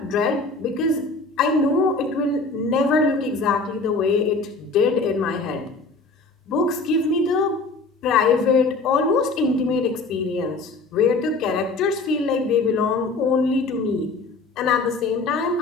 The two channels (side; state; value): right; quieter; 3.7 dB